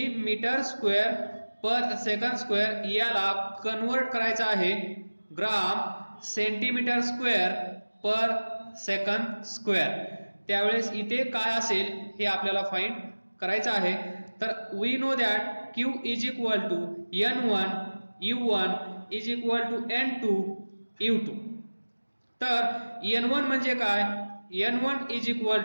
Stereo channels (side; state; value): both; inverted; correlation -1.00